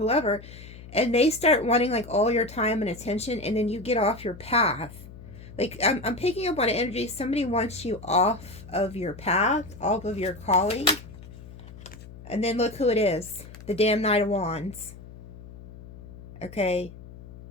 and they start wanting like all your time and attention, and then you get off your path. Like, I'm picking up on energy. Somebody wants you off of your path, off of your calling. And then look who it is. The damn Knight of Wands. Okay.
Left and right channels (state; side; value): noise; left; hum, 16 dB below the sound